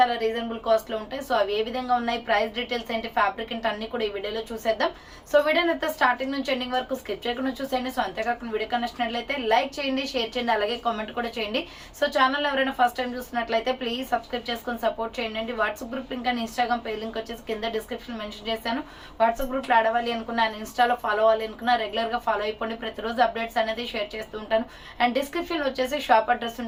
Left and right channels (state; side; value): identical; both; correlation 1.00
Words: రీజనబుల్ కాస్ట్ లో ఉంటాయి. సో అవి ఏ విధంగా ఉన్నాయి, ప్రైస్ డీటెయిల్స్ ఏంటి, ఫ్యాబ్రిక్ ఏంటి అన్ని కూడా ఈ వీడియోలో చూసేద్దాం. సో వీడియోని అయితే స్టార్టింగ్ నుంచి ఎండింగ్ వరకు స్కిప్ చేయకుండా చూసేయండి. సో అంతేకాకుండా వీడియో కనెక్షన్ లైక్ చేయండి, షేర్ చేయండి, అలాగే కామెంట్ కూడా చేయండి. సో ఛానల్ ఎవరైనా ఫస్ట్ టైం చూస్తున్నట్లయితే ప్లీజ్ సబ్స్క్రైబ్ చేసుకొని సపోర్ట్ చేయండి. WhatsApp group link and Instagram page link వచ్చేసి కింద డిస్క్రిప్షన్ మెన్షన్ చేశాను. వాట్సాప్ గ్రూప్ లో అడవాలి అనుకున్నా, ఇన్స్టాలో ఫాలో అవ్వాలి అనుకున్నా రెగ్యులర్ గా ఫాలో అయిపోండి. ప్రతిరోజు అప్డేట్స్ అనేది షేర్ చేస్తూ ఉంటాను. అండ్ డిస్క్రిప్షన్ వచ్చేసి షాప్ అడ్రస్